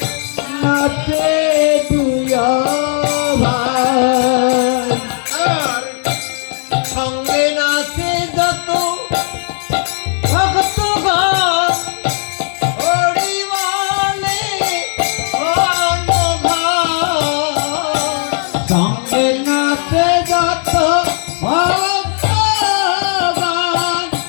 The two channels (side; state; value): right; silent; digital silence